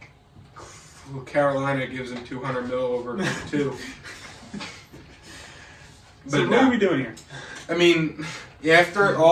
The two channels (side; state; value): both; identical; correlation 1.00